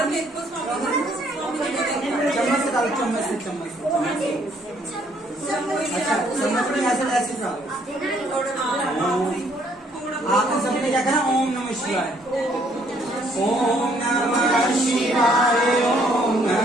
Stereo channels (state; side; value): normal; both; correlation 0.66